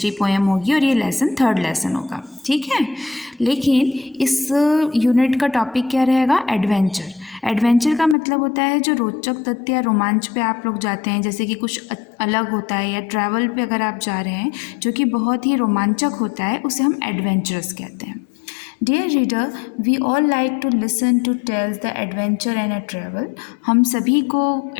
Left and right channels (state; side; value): drops out; right; at 8.2 s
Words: पोएम होगी और ये लेसन थर्ड लेसन होगा. ठीक है, लेकिन इस यूनिट का टॉपिक क्या रहेगा? एडवेंचर. एडवेंचर का मतलब होता है जो रोचक तथ्य या रोमांच पे आप लोग जाते हैं, जैसे कि कुछ अलग होता है या ट्रैवल पे अगर आप जा रहे हैं जो कि बहुत ही रोमांचक होता है, उसे हम एडवेंचरस कहते हैं. Dear reader, we all like to listen to tales the adventure and a travel. हम सभी को